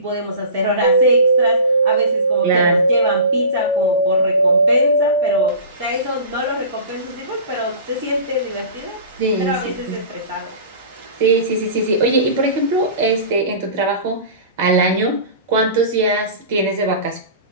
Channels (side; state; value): both; inverted; correlation -0.37